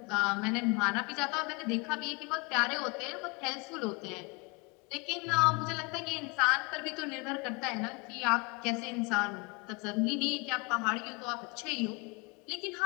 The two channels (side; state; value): right; quieter; 29.2 dB